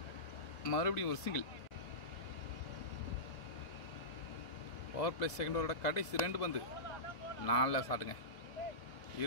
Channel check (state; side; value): late; right; 2.0 ms